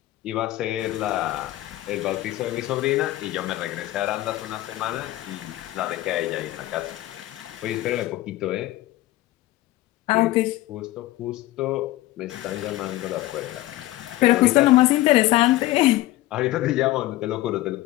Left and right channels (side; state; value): right; quieter; 16.6 dB